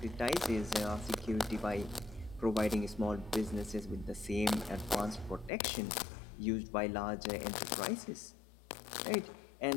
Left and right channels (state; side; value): drops out; right; at 5.5 s